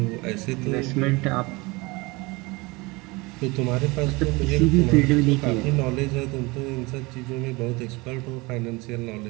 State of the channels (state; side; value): quieter; left; 24.5 dB